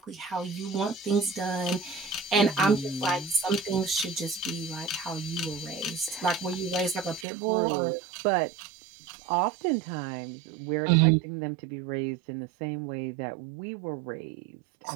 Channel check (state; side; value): drops out; left; at 7.2 s